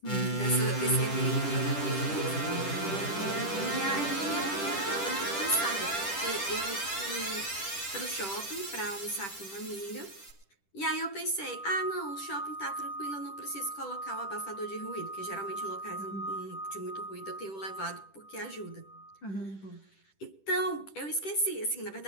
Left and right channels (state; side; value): late; right; 10 ms